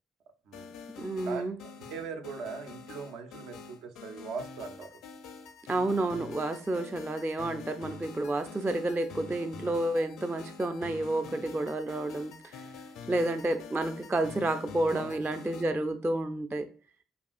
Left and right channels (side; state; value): both; normal; correlation 0.84